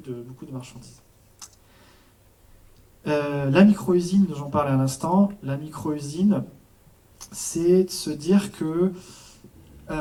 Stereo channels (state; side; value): identical; both; correlation 1.00